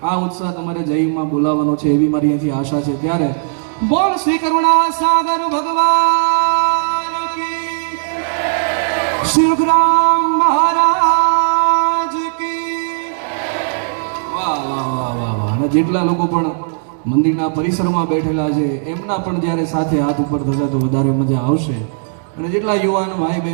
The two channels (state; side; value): silent; left; digital silence